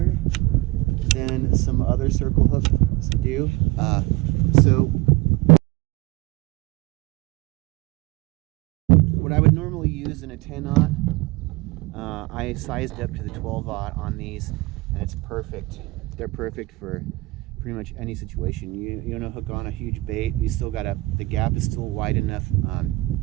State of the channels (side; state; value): left; quieter; 21.7 dB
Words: than some other circle hooks do. So what I would normally use in a 10-aught, I sized up to the 12-aught on these, and it's perfect. They're perfect for pretty much any situation. You want to hook on a huge bait, you still gotta, the gap is still wide enough,